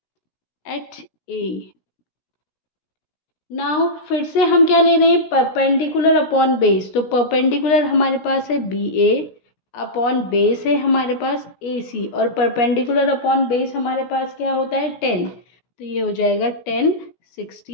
at A. Now फिर से हम क्या ले रहे हैं, परपेंडिकुलर अपॉन बेस। तो परपेंडिकुलर हमारे पास है बी ए, अपॉन बेस है हमारे पास ए सी, और परपेंडिकुलर अपॉन बेस हमारे पास क्या होता है 10। तो ये हो जाएगा 10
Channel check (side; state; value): right; late; 16 ms